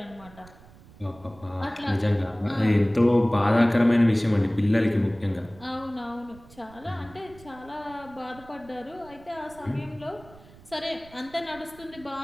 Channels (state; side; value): noise; right; rumble, 23 dB below the sound